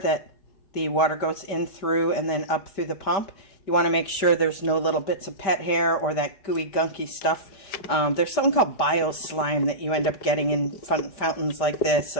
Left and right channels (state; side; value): late; right; 5.0 ms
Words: the water goes in through and then up through the pump. You want to make sure there's no little bits of pet hair or that gooey, gunky stuff. There's something called bio-slime that you end up getting in fountains like this